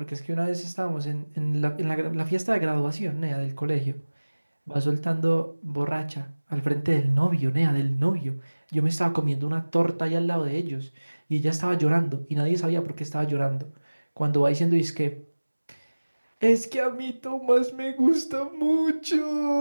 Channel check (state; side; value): inverted; both; correlation -1.00